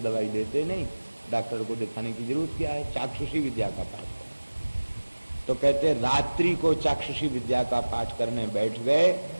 देते नहीं, डॉक्टर को दिखाने की जरूरत क्या है, चाक्षुषी विद्या का पाठ करें। तो कहते रात्रि को चाक्षुषी विद्या का पाठ करने बैठ गए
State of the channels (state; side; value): inverted; both; correlation -1.00